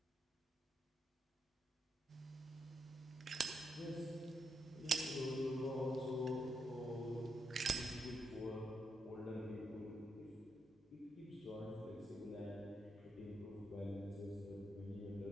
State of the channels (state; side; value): normal; both; correlation 0.81